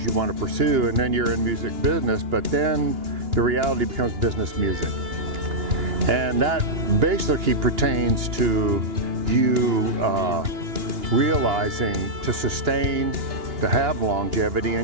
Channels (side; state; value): left; late; 2.9 ms